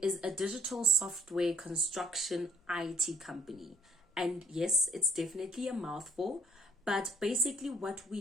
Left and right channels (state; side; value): normal; both; correlation 0.59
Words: is a digital software construction IT company. And yes, it's definitely a mouthful, but basically what